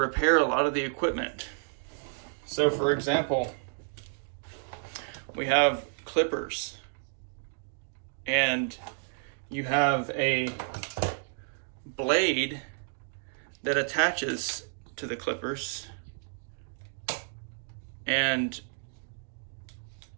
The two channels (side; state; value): left; silent; digital silence